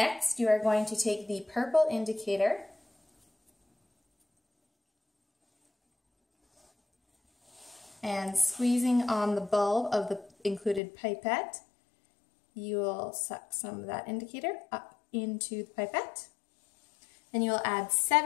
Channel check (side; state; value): right; drops out; at 10.8 s